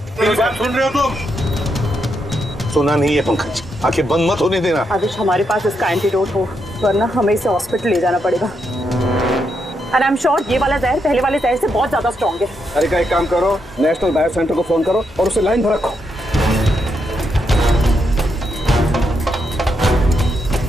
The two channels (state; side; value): normal; both; correlation 0.81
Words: मेरी बात सुन रहे हो तुम? सुना नहीं है पंकज, आंखें बंद मत होने देना। आदिश, हमारे पास इसका एंटीडोट हो, वरना हमें इसे हॉस्पिटल ले जाना पड़ेगा। एंड आई एम श्योर ये वाला जहर पहले वाले जहर से बहुत ज्यादा स्ट्रॉन्ग है। तारिका एक काम करो, नेशनल बायो सेंटर को फोन करो और उसे लाइन पर रखो।